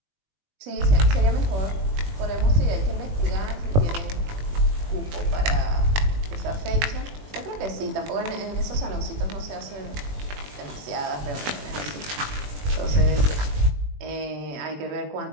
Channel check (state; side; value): late; left; 20 ms